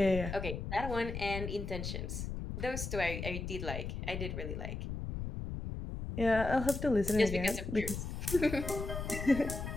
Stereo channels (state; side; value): noise; left; rumble, 5 dB below the sound